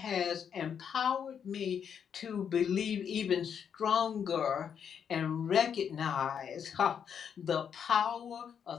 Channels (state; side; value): quieter; right; 7.7 dB